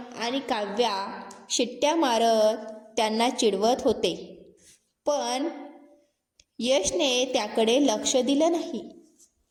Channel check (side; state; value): both; identical; correlation 1.00